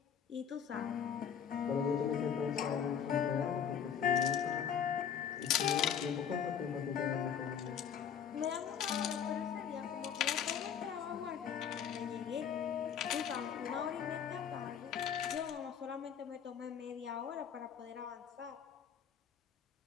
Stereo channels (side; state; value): right; quieter; 8.0 dB